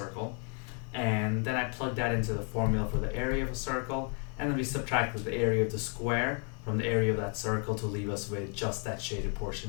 And then I plugged that into the formula for the area of a circle, and then we subtracted the area of the square from the area of that circle to leave us with just that shaded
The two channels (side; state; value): right; quieter; 39.6 dB